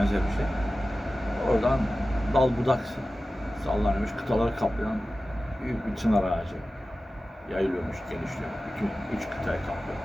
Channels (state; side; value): normal; both; correlation 0.95